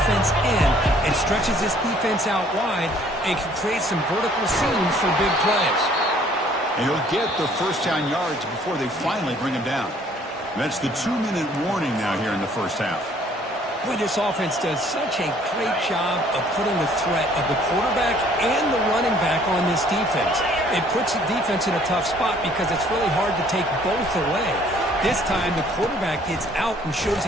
in, it stretches this defense out wide and can create some vertical seams for big plays. And he'll get the first down yards before they finally bring him down. That's the 2-minute warning now here in the first half. Boy, this offense does such a great job of putting the threat of the quarterback and the running back on this defense. It puts the defense in a tough spot because it's really hard to take both away. This time, the quarterback gets out and shows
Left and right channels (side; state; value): both; normal; correlation 0.59